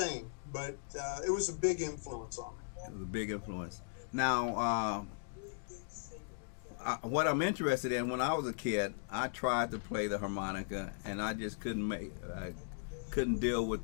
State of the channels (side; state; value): right; silent; digital silence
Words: But it was a big influence on me. It was a big influence. Now, what I'm interested in, when I was a kid, I tried to play the harmonica, and I just couldn't deal with